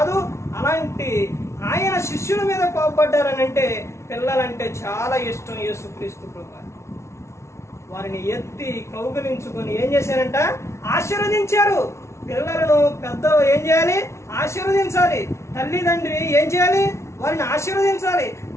అలాంటి ఆయన శిష్యుల మీద కోపడ్డారని అంటే పిల్లలంటే చాలా ఇష్టం యేసుక్రీస్తు ప్రభువారు. వారిని ఎత్తి కౌగిలించుకొని ఏం చేశారంట? ఆశీర్వదించారు. పిల్లలను పెద్దలు ఏం చేయాలి? ఆశీర్వదించాలి. తల్లిదండ్రి ఏం చేయాలి? వారిని ఆశీర్వదించాలి,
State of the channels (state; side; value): late; right; 0.13 ms